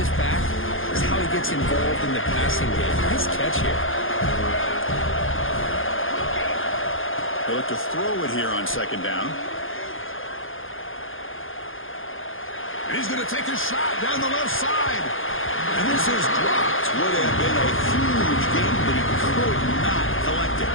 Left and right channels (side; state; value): right; late; 0.59 ms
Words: back is how he gets involved in the passing game. Nice catch here. They look to throw it here on 2nd down. And he's going to take a shot down the left side. And this is dropped. Would have been a huge gain, but he could not collect it.